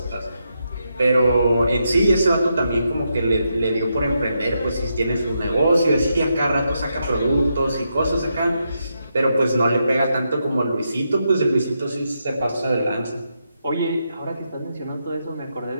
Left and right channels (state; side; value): inverted; both; correlation -0.83